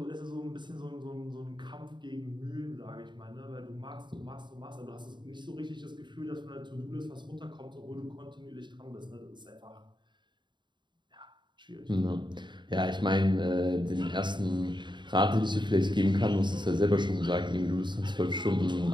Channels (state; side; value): late; left; 0.22 ms